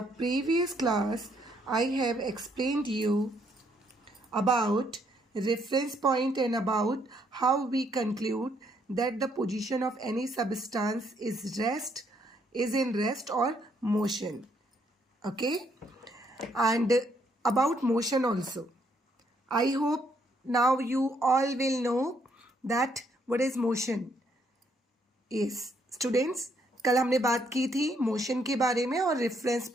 previous class, I have explained you about reference point and about how we conclude that the position of any substance is in rest or motion. Okay, and about motion also. I hope now you all will know that what is motion is. Students, कल हमने बात की थी मोशन के बारे में और reference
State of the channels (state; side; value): normal; both; correlation 0.71